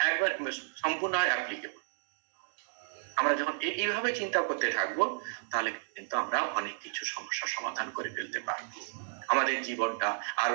সম্পূর্ণ অ্যাপ্লিকেবল। আমরা যখন এইভাবে চিন্তা করতে থাকবো তাহলে কিন্তু আমরা অনেক কিছু সমস্যার সমাধান করে ফেলতে পারবো, আমাদের জীবনটা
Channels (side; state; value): left; silent; digital silence